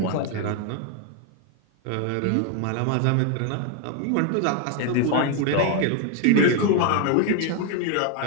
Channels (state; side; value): different; both; correlation 0.01